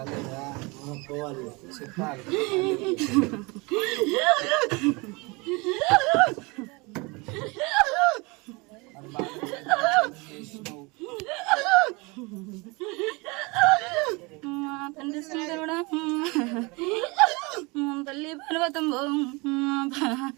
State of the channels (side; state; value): left; quieter; 26.9 dB